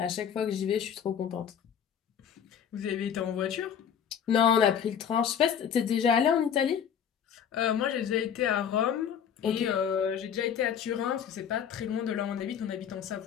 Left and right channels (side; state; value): right; quieter; 8.3 dB